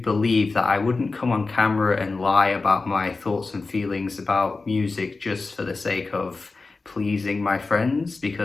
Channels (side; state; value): right; quieter; 3.8 dB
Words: believe that I wouldn't come on camera and lie about my thoughts and feelings about music just for the sake of pleasing my friends,